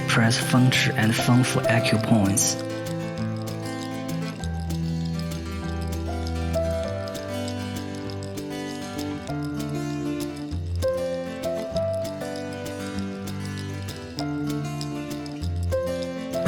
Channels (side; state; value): both; identical; correlation 1.00